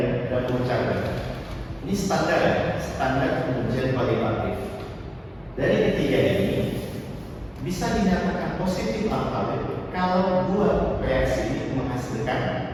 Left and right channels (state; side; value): identical; both; correlation 1.00